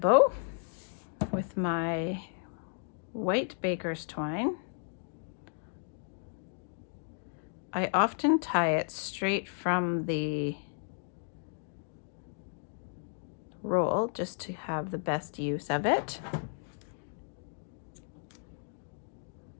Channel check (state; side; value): silent; right; digital silence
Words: with my white baker's twine. I often tie it straight from the roll just to have the best use of it.